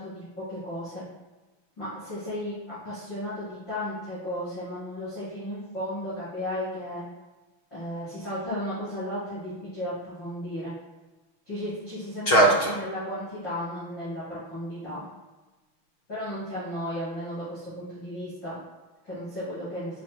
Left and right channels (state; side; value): late; right; 6.3 ms